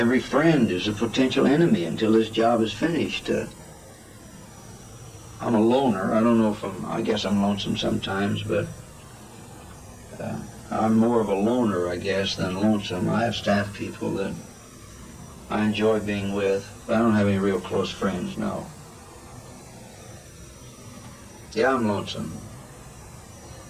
friend is a potential enemy until this job is finished. I'm a loner. I don't know if I guess I'm lonesome sometimes, but I'm more of a loner, I guess, than lonesome. I have staff people that I enjoy being with, but I don't have any real close friends, no. Yeah, I'm lonesome.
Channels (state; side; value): identical; both; correlation 1.00